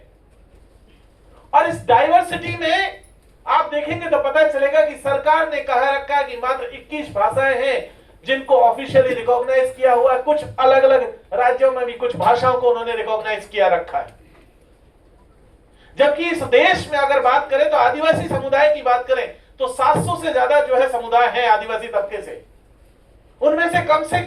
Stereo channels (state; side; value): identical; both; correlation 1.00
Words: और इस डाइवर्सिटी में आप देखेंगे तो पता चलेगा कि सरकार ने कहा रखा है कि मात्र 21 भाषाएं हैं जिनको ऑफिशियली रिकॉग्नाइज किया हुआ है। कुछ अलग अलग राज्यों में भी कुछ भाषाओं को उन्होंने रिकॉग्नाइज किया रखा है। जबकि इस देश में अगर बात करें तो आदिवासी समुदाय की बात करें तो 700 से ज्यादा जो है समुदाय है आदिवासी तबके से। उनमें से कम